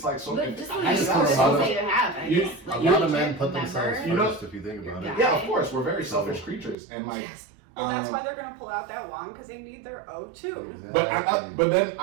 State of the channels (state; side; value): drops out; left; at 6.8 s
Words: like so. But just I like just the have a lot conversations of- that you have. I You- guess. Like, A you lot of can't men put themselves remember. You know- first, if you think about it. Yeah. Yeah, of course. We're very selfish creatures, and like. Yes. Well, that's um, why they're gonna pull out that wand because they need their O2. Exactly. But then